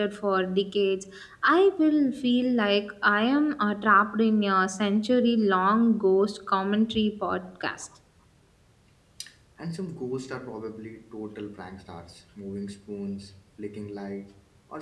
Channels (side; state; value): both; identical; correlation 1.00